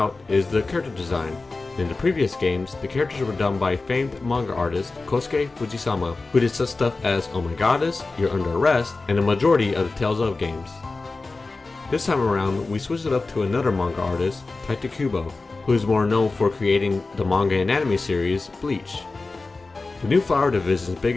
is the character design. In the previous games, the characters were done by famed manga artist Kosuke Fujisama, who did such stuff as Oh My Goddess, You're Under Arrest, and the majority of the Tales of games. This time around, we switched it up to another manga artist, Taita Kubo, who is more known for creating the manga and anime series Bleach. The new Flower Division's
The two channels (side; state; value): right; quieter; 3.6 dB